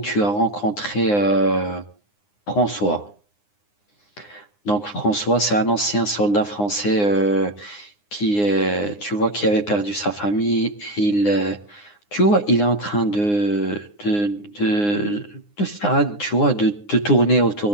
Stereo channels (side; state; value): right; late; 9.7 ms